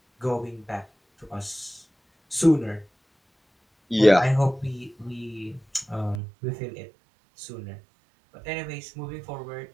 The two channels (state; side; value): drops out; left; at 6.2 s